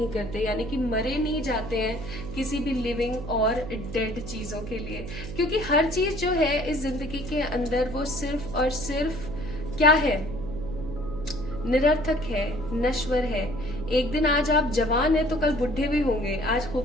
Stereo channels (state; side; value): noise; right; hum, 10 dB below the sound